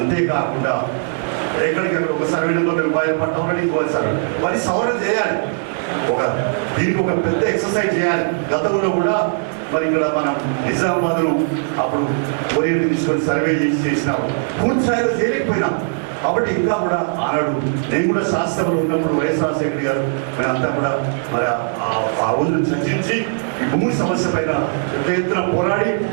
ఎక్కడికక్కడ ఒక సర్వే నెంబర్ రూపాయలు పట్టమని ఇంకో సర్వే మరి సవరణ చేయాలి. దీనికి ఒక పెద్ద ఎక్సర్సైజ్ చేయాలి. గతంలో కూడా మరి ఇక్కడ మనం నిజామాబాద్ను అప్పుడు కోరియర్ తీసుకొని సర్వే చేసినాము, పూర్తి స్థాయిలో చేయలేకపోయినాం. కాబట్టి ఇంకా కూడా ఆనాడు నేను కూడా శాస్త్రంలో ఉన్నప్పుడు వైఎస్ రాజశేఖర్ గారు మేమంతా కూడా మరి ఆ రోజును చర్చించి ఈ భూమి సమస్య పైన పెద్ద ఎత్తున పోరాడి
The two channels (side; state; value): left; silent; digital silence